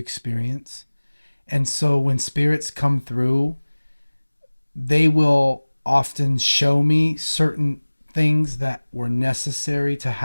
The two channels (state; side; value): inverted; both; correlation -1.00